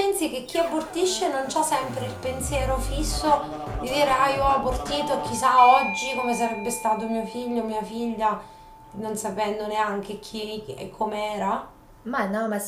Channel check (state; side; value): identical; both; correlation 1.00